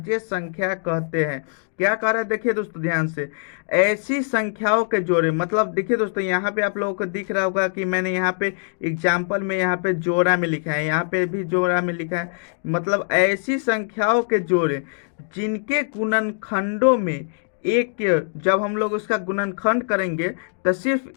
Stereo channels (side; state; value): right; silent; digital silence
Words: संख्या कहते हैं। क्या कह रहे हैं, देखिए दोस्तों ध्यान से, ऐसी संख्याओं के जोड़े, मतलब देखिए दोस्तों यहाँ पे आप लोगों को दिख रहा होगा कि मैंने यहाँ पे एग्जाम्पल में यहाँ पे जोड़ा में लिखा है, यहाँ पे भी जोड़ा में लिखा है। मतलब ऐसी संख्याओं के जोड़े जिनके गुणनखंडों में एक के, जब हम लोग उसका गुणनखंड करेंगे तो